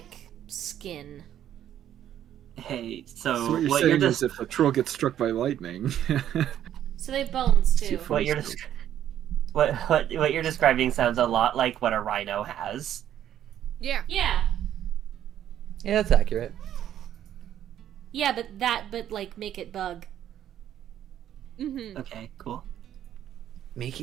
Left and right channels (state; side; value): quieter; left; 10.9 dB